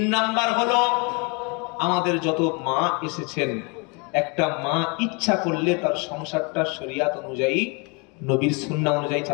নাম্বার হলো, আমাদের যত মা এসেছেন, একটা মা ইচ্ছা করলে তার সংসারটা শরিয়াত অনুযায়ী, নবীর সুন্নাহ অনুযায়ী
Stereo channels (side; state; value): right; quieter; 31.2 dB